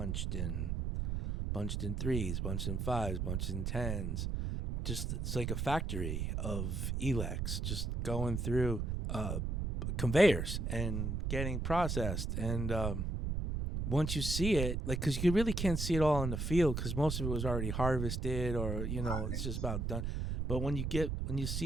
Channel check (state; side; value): noise; right; rumble, 1 dB below the sound